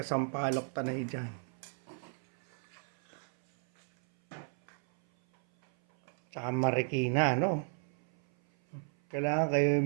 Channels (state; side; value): silent; left; 55 dB below the other